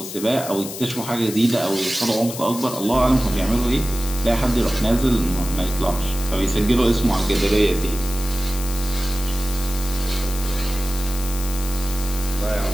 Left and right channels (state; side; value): noise; left; hiss, 10 dB below the sound